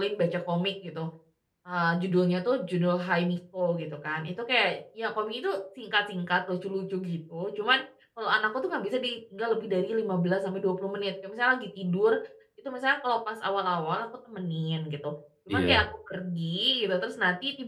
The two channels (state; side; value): identical; both; correlation 1.00